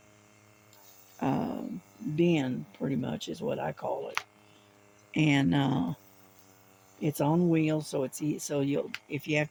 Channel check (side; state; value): both; identical; correlation 1.00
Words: uh, bin, pretty much is what I call it. And it's on wheels, so so you'll if you have